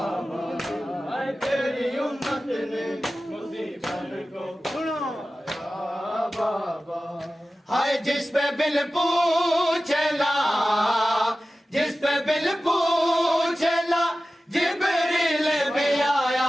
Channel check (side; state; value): both; normal; correlation 0.95